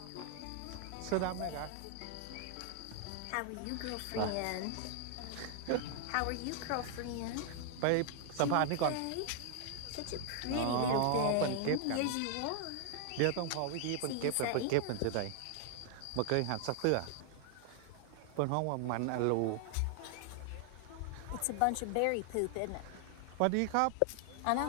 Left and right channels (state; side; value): different; both; correlation 0.00